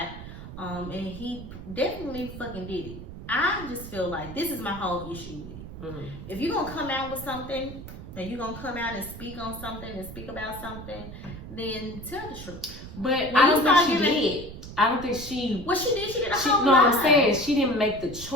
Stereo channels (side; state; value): right; noise; rumble, 12 dB below the sound